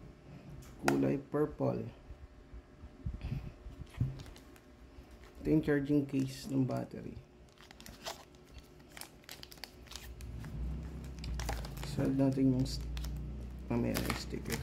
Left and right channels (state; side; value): identical; both; correlation 1.00